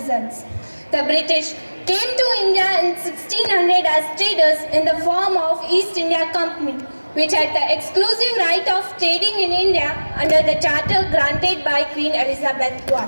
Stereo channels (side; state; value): both; inverted; correlation -1.00